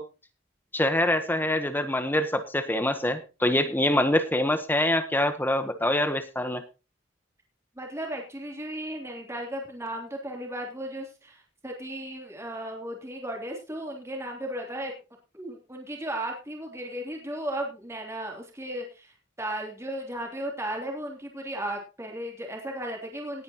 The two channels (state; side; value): normal; both; correlation 0.60